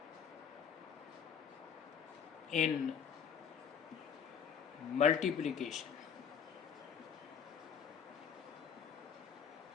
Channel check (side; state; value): right; quieter; 7.4 dB